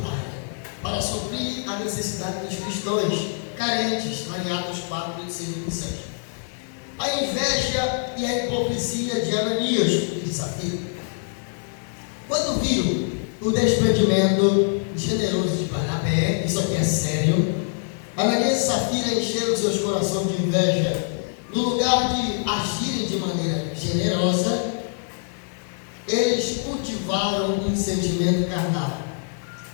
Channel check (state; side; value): silent; right; 62 dB below the other